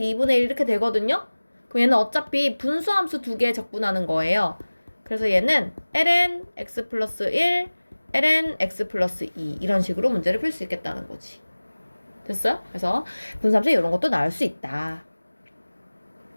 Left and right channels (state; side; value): inverted; both; correlation -1.00